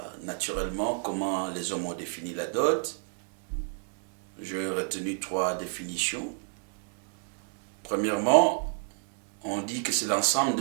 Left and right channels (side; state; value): left; silent; 58 dB below the other